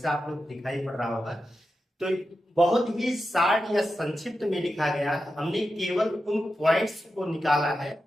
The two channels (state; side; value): normal; both; correlation 0.90